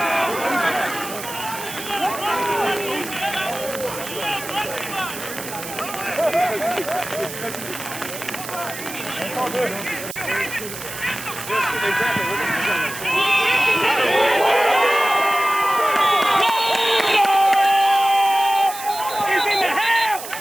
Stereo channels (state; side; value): noise; right; hiss, 10 dB below the sound